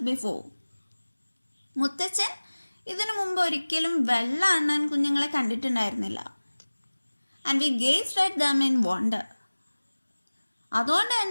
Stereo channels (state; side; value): inverted; both; correlation -1.00